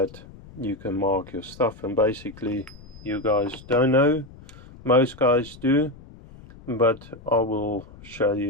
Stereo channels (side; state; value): left; noise; rumble, 20 dB below the sound